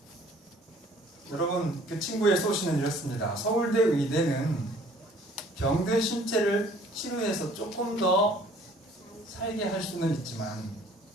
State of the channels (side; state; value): both; normal; correlation 0.55